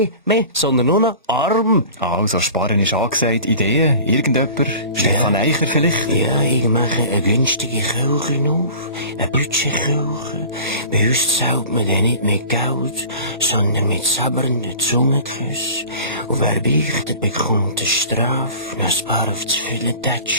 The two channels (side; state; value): both; inverted; correlation -0.42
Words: mehr, sondern nur noch Arm. Also, Sparen ist angesagt. Ideen? Irgendjemand? Stefan Eicher vielleicht? Ja, ich mache eine günstige Kirche auf, eine Budgetkirche. Bei uns zahlt man dann nicht mit Geld, sondern mit sabbernden Zungenküssen. Und wer beichtet, bekommt eine Strafe, noch ein paar auf das